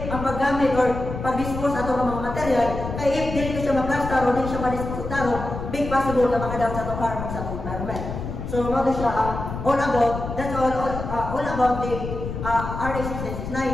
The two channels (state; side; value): noise; left; rumble, 7 dB below the sound